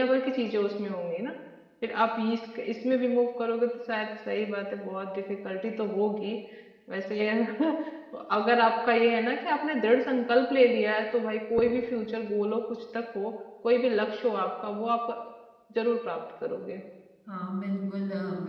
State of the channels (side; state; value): both; identical; correlation 1.00